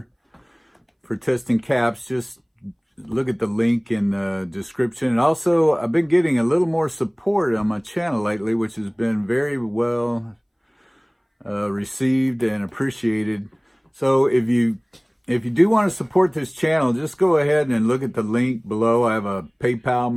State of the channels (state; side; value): identical; both; correlation 1.00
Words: for testing caps, just look at the link in the description. And also, I've been getting a little more support on my channel lately, which has been very well received and appreciated. So if you do want to support this channel, just go ahead and look at the link below. I have a PayPal